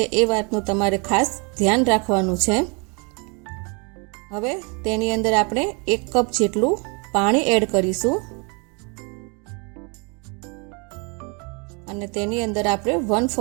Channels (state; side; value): quieter; left; 33.3 dB